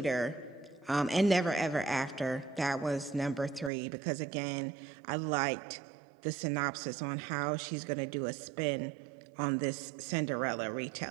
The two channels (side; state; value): left; drops out; at 3.7 s